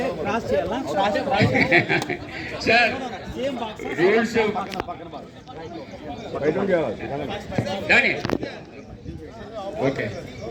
సార్ రూల్స్ దాని ఓకే.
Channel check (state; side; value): identical; both; correlation 1.00